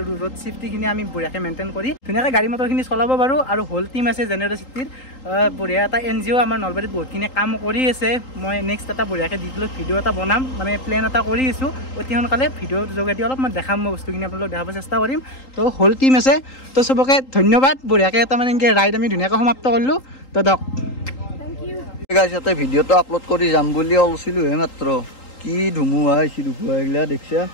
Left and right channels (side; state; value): right; late; 3.8 ms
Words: ৰোড ছেফটিখিনি আমি বঢ়িয়াকৈ মেইনটেইন কৰি ধুনীয়াকৈ গাড়ী মটৰখিনি চলাব পাৰোঁ আৰু হোল টিম আছে জেনেৰচিটিৰ বঢ়িয়া এটা NGO আমাৰ নলবাৰীত বহুতখিনি কাম কৰি আছে মই নেক্সট এটা বঢ়িয়াকৈ ডিটেইলত ভিডিঅ' এটা বনাম মানে প্লেন এটা কৰি আছোঁ অতি সোনকালে ভিডিঅ'ৰ যোগেদি অলপ মই দেখাম মই বস্তুখিনি আপোনালোক দেখাব চেষ্টা কৰিম তো হোল টিম আছে তো চবকে ধন্যবাদ বঢ়িয়াকৈ এটা মানে এনেকৈ ৰাইড আমি ধুনীয়াকৈ সমাপ্ত কৰিলোঁ তো দক থেংক ইউ গাইছ ইয়াতে ভিডিঅ'টো আপলোড কৰি যাম বুলি ওলছিলোঁ হে মাত্ৰ কি ধুমুহা আহিছে ধুমুহা এইগিলা দেখিছা